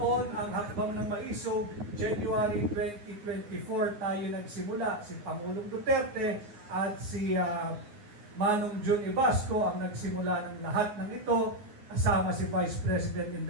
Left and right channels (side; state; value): left; late; 9.7 ms